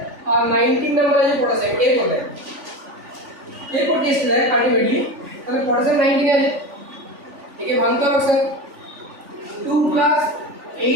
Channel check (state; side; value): late; left; 3.5 ms